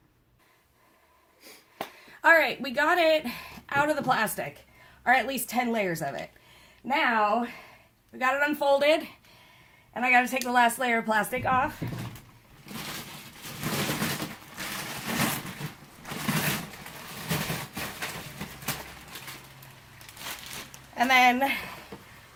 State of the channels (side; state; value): both; identical; correlation 1.00